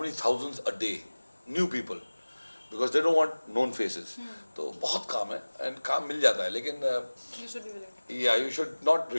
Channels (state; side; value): inverted; both; correlation -1.00